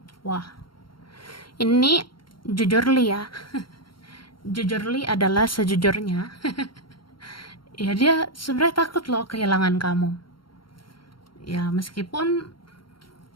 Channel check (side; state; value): right; late; 0.73 ms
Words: Wah, ini jujurly ya. Jujurly adalah sejujurnya. Ya dia sebenarnya takut loh kehilangan kamu. Ya meskipun